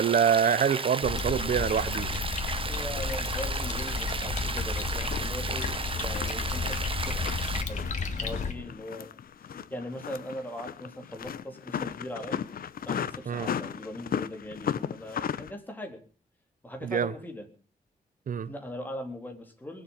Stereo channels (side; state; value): both; normal; correlation 0.26